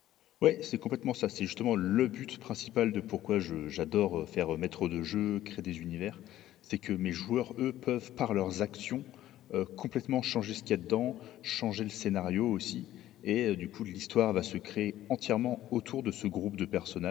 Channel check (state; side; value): quieter; right; 13.6 dB